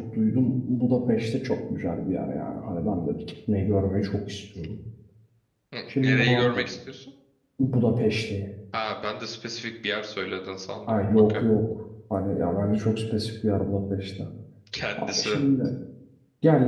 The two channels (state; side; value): identical; both; correlation 1.00